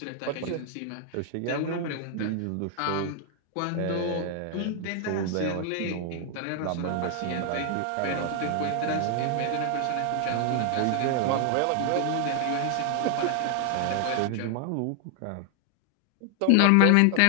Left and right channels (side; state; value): both; different; correlation 0.00